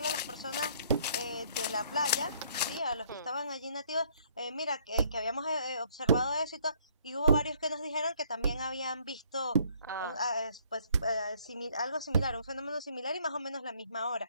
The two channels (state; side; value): inverted; both; correlation -0.64